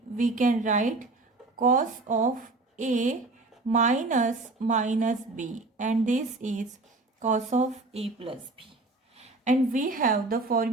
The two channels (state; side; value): quieter; left; 3.2 dB